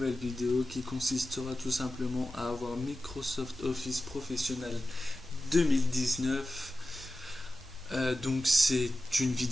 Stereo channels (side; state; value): both; normal; correlation 0.94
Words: vidéo qui consistera tout simplement à avoir Microsoft Office Professionnel 2019. Donc c'est une